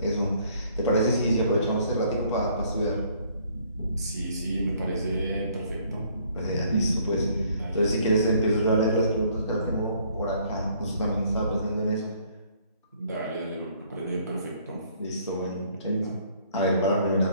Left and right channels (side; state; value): both; inverted; correlation -0.62